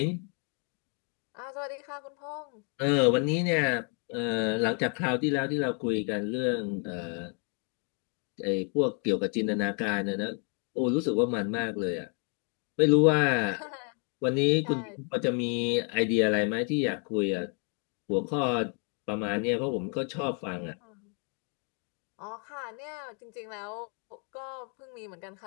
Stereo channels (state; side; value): quieter; right; 39.6 dB